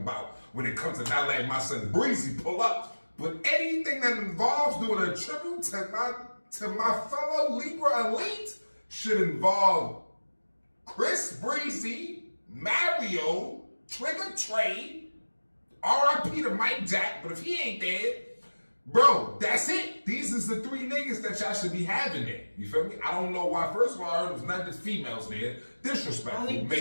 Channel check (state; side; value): inverted; both; correlation -1.00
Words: when it comes to not letting my son Breezy pull up. But anything that involves doing a tribute to my fellow Libra elite should involve Chris Breezy, Mario, Trigger Trey, R.I.P. to Mike Jack, but if he ain't dead, bro, that's it. These is the three niggas that y'all should be having there. You feel me? I don't know why. First of all, I heard it was not just females there. Disrespectful. Only